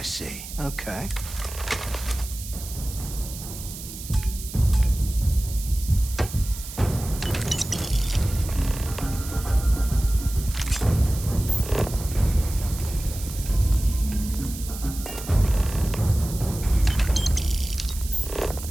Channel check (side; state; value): right; noise; hiss, 12 dB below the sound